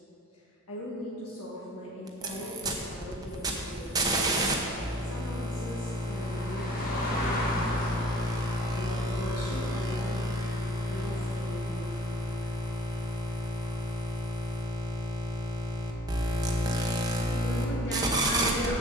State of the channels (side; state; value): both; normal; correlation 0.53